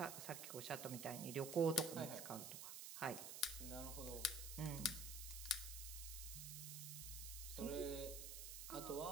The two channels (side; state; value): right; noise; hiss, 6 dB below the sound